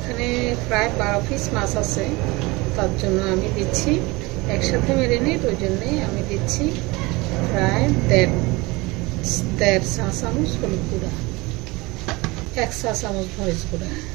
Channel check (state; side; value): quieter; left; 23.5 dB